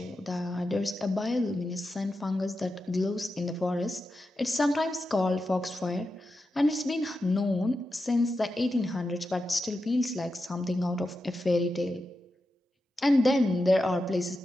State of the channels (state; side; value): normal; both; correlation 0.89